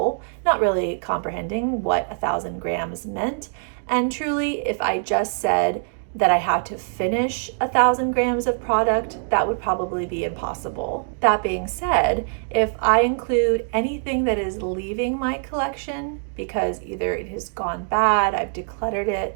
not really comprehending what 1,000 grams meant. And truly, if I just said that I had to finish 1,000 grams of product, that would probably be impossible. That being said, if I include anything that is leaving my collection because either it has gone bad, I've decluttered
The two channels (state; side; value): silent; left; digital silence